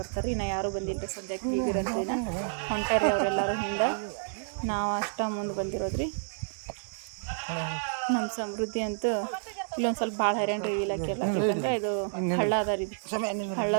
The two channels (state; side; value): silent; left; digital silence